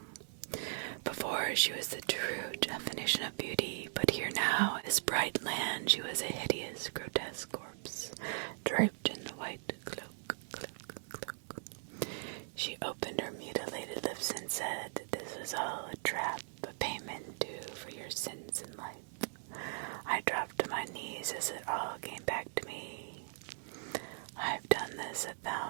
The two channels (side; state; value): left; silent; digital silence